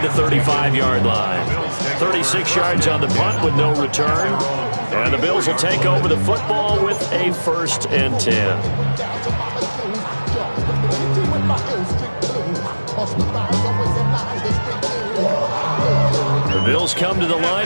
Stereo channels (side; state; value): both; inverted; correlation -1.00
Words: the 35-yard line. 36 yards on the punt with no return. And the Bills will take over the football with a 1st and 10. The Bills come to the